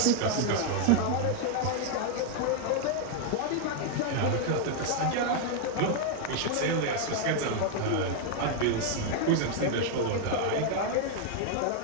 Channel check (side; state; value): both; different; correlation 0.00